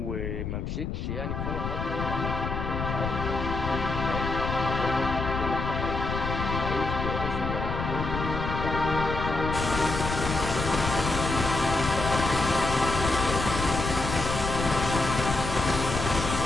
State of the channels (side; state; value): left; noise; rumble, 4 dB below the sound